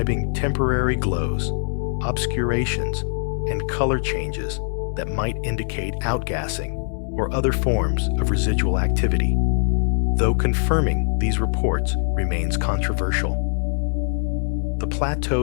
temporary glows, obscurations, and color changes that might indicate outgassing or other forms of residual activity, though confirming these reports remains controversial. The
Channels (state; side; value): silent; right; digital silence